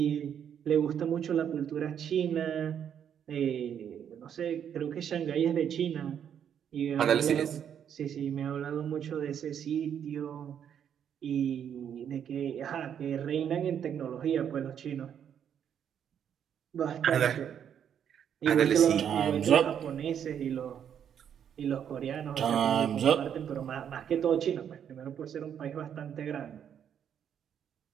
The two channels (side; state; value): left; quieter; 8.7 dB